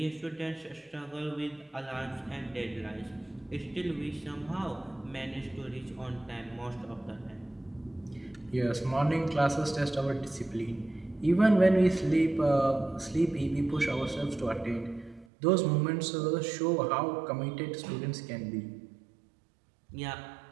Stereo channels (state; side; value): drops out; left; at 15.2 s